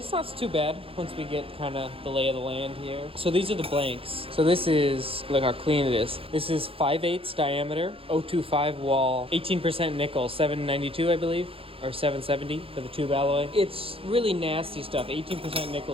not too bad once we get kind of the lay of the land here. So these are the blanks. So this is, look how clean it is. This is 5/8 diameter, 025 wall, 18% nickel, 792 I believe. Or 770 for the tube alloy. It's really nasty stuff. 18%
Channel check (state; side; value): late; left; 0.27 ms